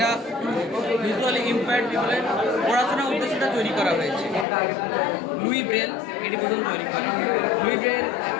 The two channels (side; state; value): right; drops out; at 4.5 s